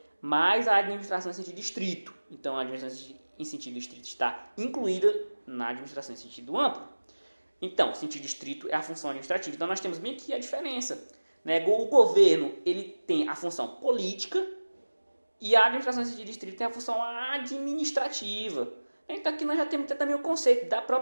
mais a administração em sentido estrito. Então, a administração em sentido estrito está incluída na administração em sentido amplo. Então, o sentido estrito é a função administrativa. Então, nós temos bem aqui a diferença. Né? O governo ele tem a função política e a administração em sentido estrito tem a função administrativa. Então, aqui nós já temos também o conceito da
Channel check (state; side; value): inverted; both; correlation -1.00